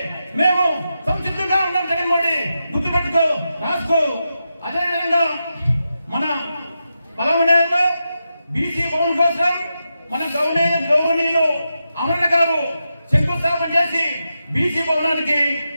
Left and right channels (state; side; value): inverted; both; correlation -0.88